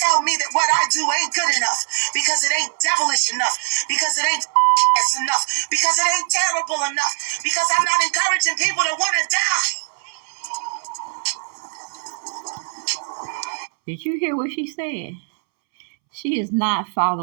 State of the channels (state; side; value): silent; left; 65 dB below the other